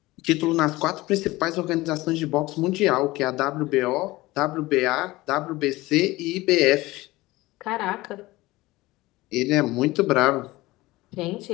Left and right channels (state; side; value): quieter; right; 19.5 dB